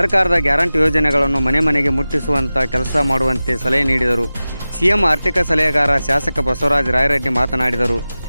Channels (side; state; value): both; inverted; correlation -0.96